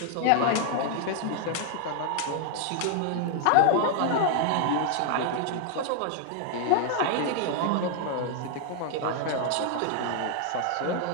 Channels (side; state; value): both; different; correlation 0.00